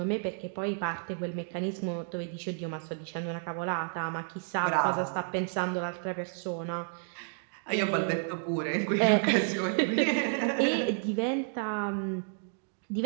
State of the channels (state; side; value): silent; left; 57 dB below the other